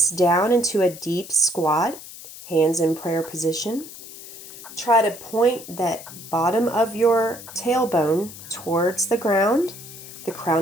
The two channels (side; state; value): left; noise; hiss, 15 dB below the sound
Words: down into a deep squat. Hands in prayer position. Try to point that bottom of your tailbone towards the ground, the